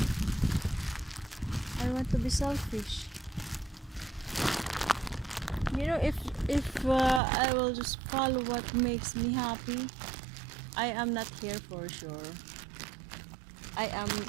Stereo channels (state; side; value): drops out; left; at 7.2 s